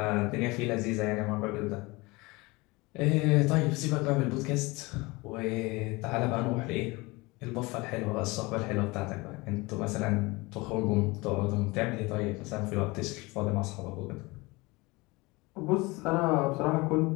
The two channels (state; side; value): quieter; right; 23.7 dB